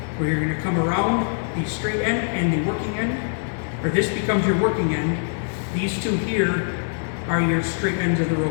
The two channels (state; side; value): silent; right; digital silence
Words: where you're going to come around the straight end and the working end, or this becomes your working end. These two here are your straight ends of the